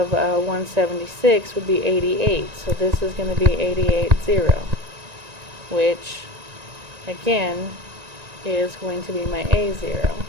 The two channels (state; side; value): late; left; 1.9 ms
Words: would be 88. So this is going to be 88, 0, which again is going to be my A0.